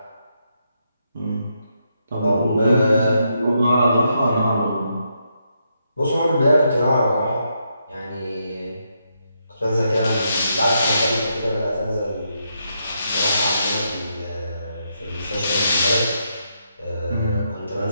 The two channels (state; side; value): inverted; both; correlation -0.80